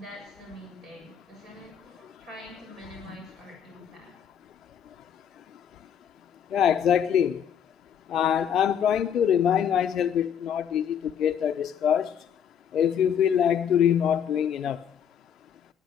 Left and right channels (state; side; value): quieter; right; 8.5 dB